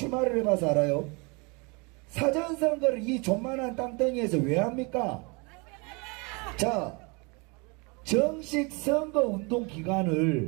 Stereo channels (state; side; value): quieter; left; 29.9 dB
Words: 해봐서 알아요. 사전선거를 이 존만한 땅덩이에서 왜 합니까? 자, 정식 선거운동